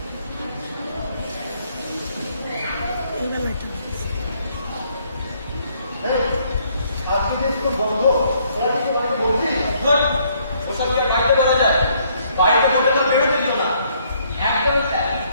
আজকে যে স্কুল বন্ধ ওরা কি তোমাকে বলছি ওসব কি আর বাড়িতে বলা যায়? বাড়িতে বলতে তো বেরোতে দিল না। একদমই স্যার,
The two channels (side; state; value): both; inverted; correlation -0.67